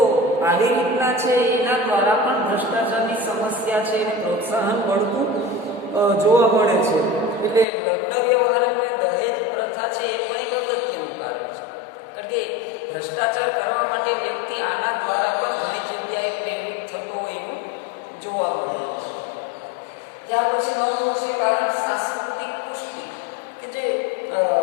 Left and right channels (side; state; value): right; drops out; at 7.7 s